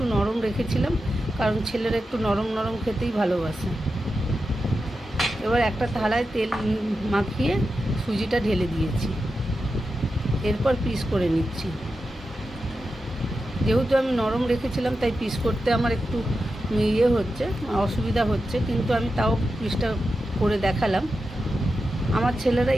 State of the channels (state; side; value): normal; both; correlation 0.90